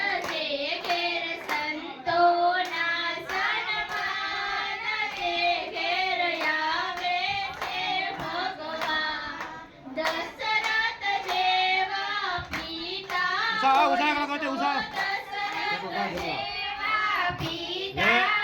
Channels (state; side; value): identical; both; correlation 1.00